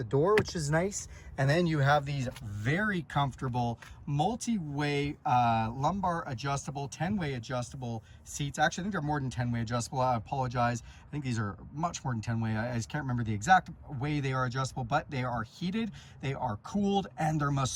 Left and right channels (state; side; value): identical; both; correlation 1.00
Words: door, which is nice. And then you have these very comfortable multi-way lumbar adjustable, 10-way adjustable seats. Actually, I think they're more than 10-way adjustable. I apologize. I think these are much more than 10-way. I just can't remember the exact way they are adjustable, but they are heated, they are cooled, and they're